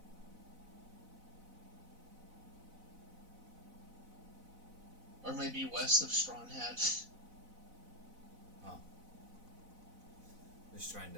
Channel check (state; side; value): late; left; 4.0 ms